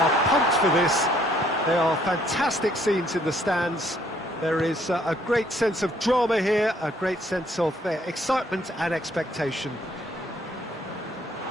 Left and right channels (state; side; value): normal; both; correlation 0.65